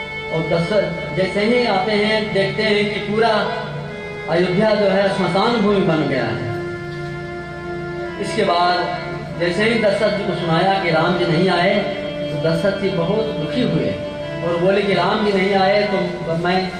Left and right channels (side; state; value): both; identical; correlation 1.00